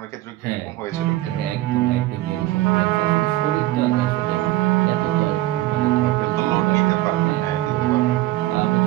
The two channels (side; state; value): left; quieter; 16.7 dB